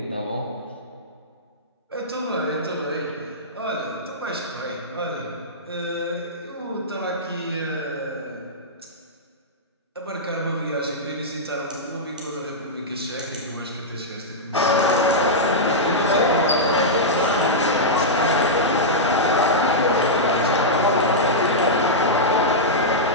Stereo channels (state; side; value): normal; both; correlation -0.10